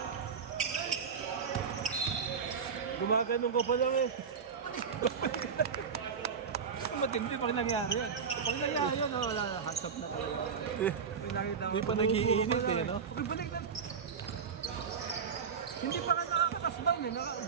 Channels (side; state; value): left; quieter; 6.3 dB